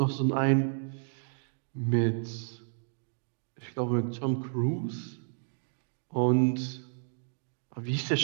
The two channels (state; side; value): silent; left; digital silence